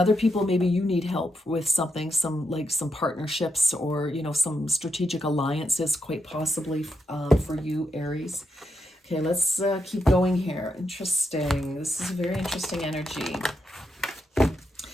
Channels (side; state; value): both; normal; correlation 0.82